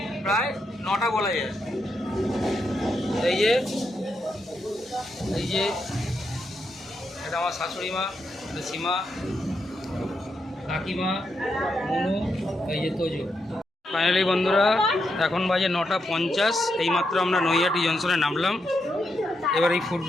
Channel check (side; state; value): both; normal; correlation 0.83